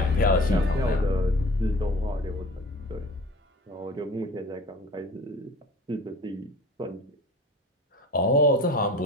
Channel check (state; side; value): normal; both; correlation 0.42